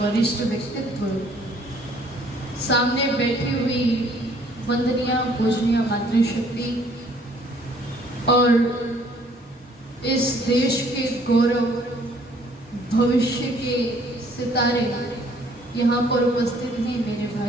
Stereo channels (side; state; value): both; normal; correlation 0.60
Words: व्यक्तित्व, सामने बैठी हुई वंदनीय पूजनीय मातृशक्ति और इस देश के गौरव, भविष्य के सितारे यहाँ पर उपस्थित हैं मेरे